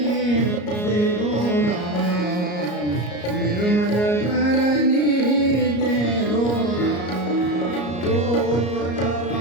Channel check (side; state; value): right; late; 34 ms